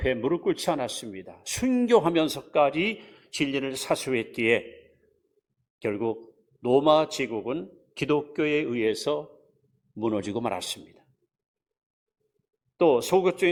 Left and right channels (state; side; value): identical; both; correlation 1.00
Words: 무릎 꿇지 않았습니다. 순교하면서까지 진리를 사수했기에 결국 로마 제국은 기독교에 의해서 무너지고 말았습니다. 또